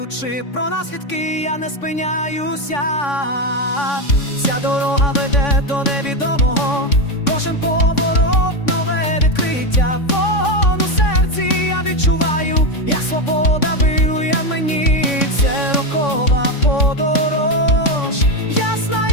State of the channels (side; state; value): right; late; 3.6 ms